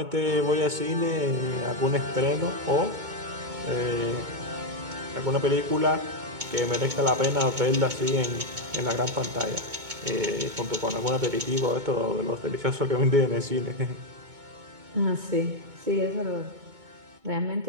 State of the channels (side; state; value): left; late; 2.2 ms